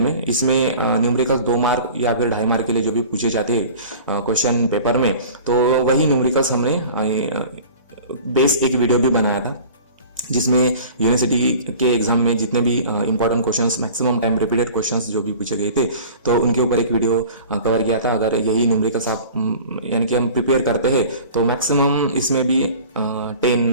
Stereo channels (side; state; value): both; inverted; correlation -0.42